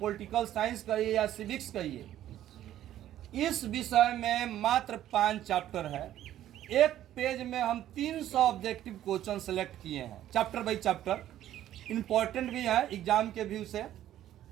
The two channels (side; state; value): left; quieter; 12.4 dB